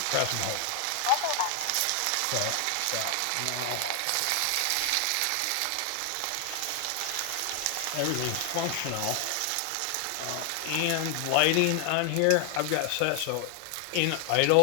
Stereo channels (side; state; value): both; different; correlation 0.00